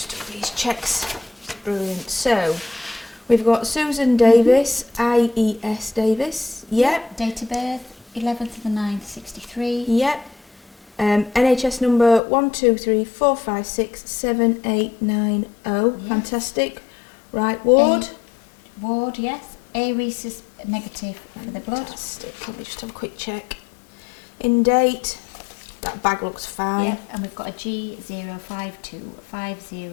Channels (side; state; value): right; drops out; at 12.2 s